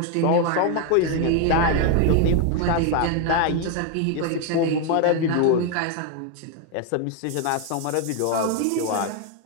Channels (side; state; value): both; different; correlation 0.01